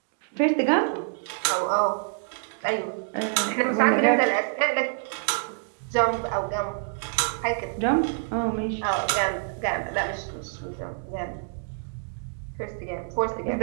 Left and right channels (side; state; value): left; silent; digital silence